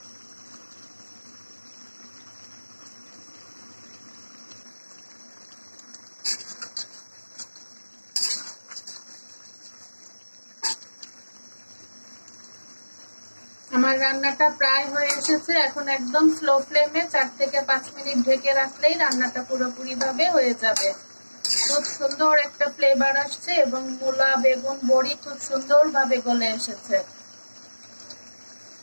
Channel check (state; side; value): inverted; both; correlation -1.00